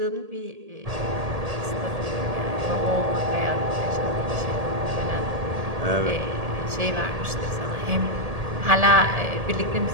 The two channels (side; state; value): left; late; 1.8 ms